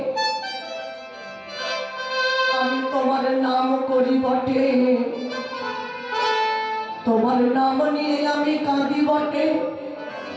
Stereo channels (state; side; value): identical; both; correlation 1.00